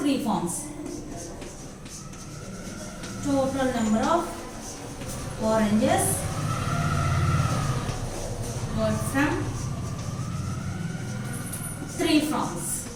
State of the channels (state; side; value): identical; both; correlation 1.00